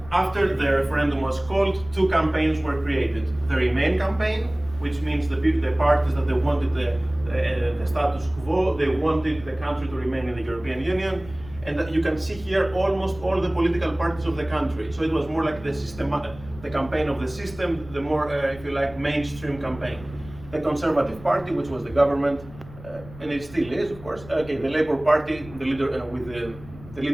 After the referendum was called, 2 campaigns were created. The Remain campaign, which means the parties that they wanted the status quo, they wanted the country to remain in the European Union, and that you can see here almost all the political parties of the country. So it was more like the campaign of the system, the more, if you like, mainstream campaign. The Conservative Party, which was the government, and it still is, of course. Okay, the Labour Party, the leader with the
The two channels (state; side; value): noise; left; rumble, 18 dB below the sound